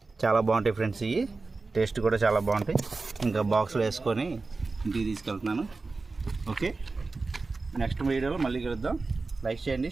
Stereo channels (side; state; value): left; quieter; 3.8 dB